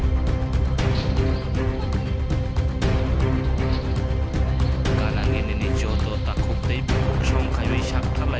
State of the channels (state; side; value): identical; both; correlation 1.00